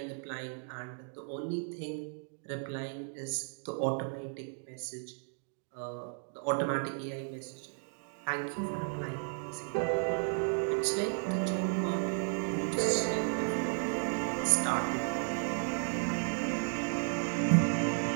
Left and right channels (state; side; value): silent; left; 55 dB below the other